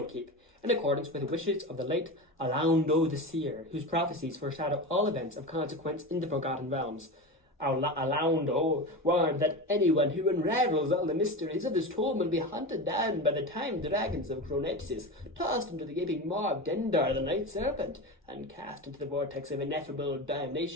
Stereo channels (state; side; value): normal; both; correlation 0.25